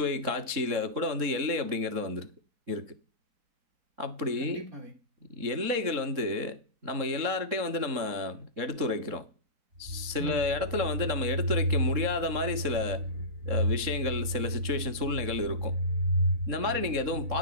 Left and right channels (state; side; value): late; left; 3.7 ms